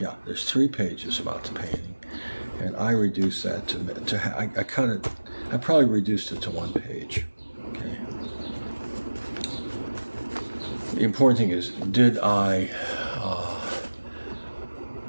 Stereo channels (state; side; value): inverted; both; correlation -1.00